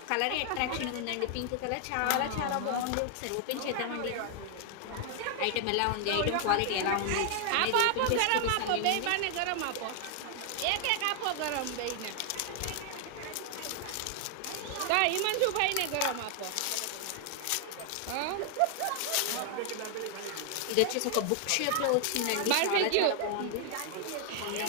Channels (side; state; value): both; different; correlation 0.00